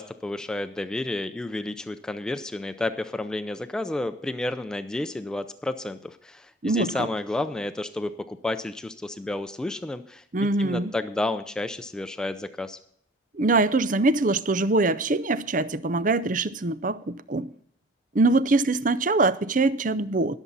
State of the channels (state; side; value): normal; both; correlation 0.47